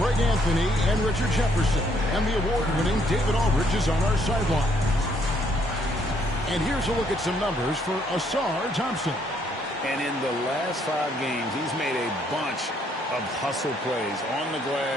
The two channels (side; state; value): both; normal; correlation 0.69